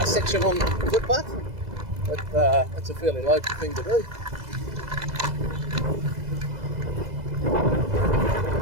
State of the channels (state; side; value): late; left; 2.0 ms